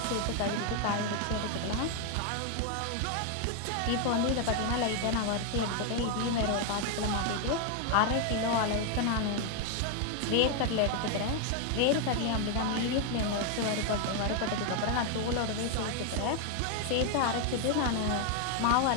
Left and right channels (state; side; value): different; both; correlation 0.01